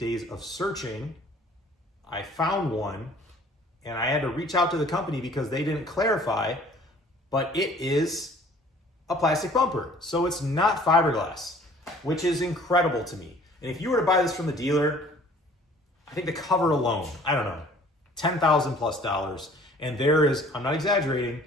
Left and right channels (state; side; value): normal; both; correlation 0.53